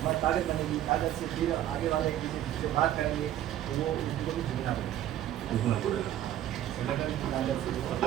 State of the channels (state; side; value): quieter; left; 12.2 dB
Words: ताकत बनेगी, ताकत से फिर आगे वाले एक दूसरे से बात करेंगे, तो वो उनको भी झुकना पड़ेगा, संगठन की ताकत से